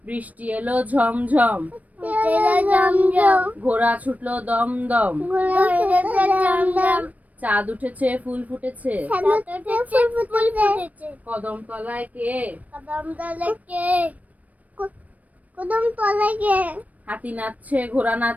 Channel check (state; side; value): late; left; 0.072 ms